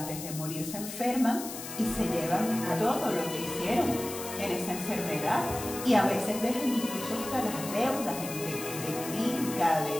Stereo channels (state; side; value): noise; left; hiss, 9 dB below the sound